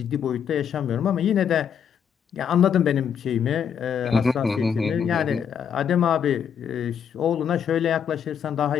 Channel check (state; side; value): quieter; right; 7.9 dB